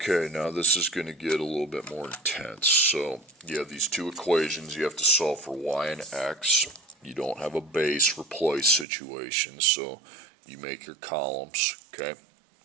now this is going to get a little bit more intense. So you have these two equations. You have to solve for y and x. You don't have a base replace situation, so you make your columns, okay?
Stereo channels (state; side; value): drops out; left; at 8.8 s